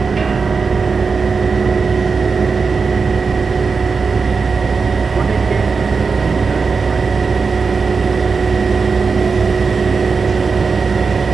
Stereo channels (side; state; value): left; quieter; 4.9 dB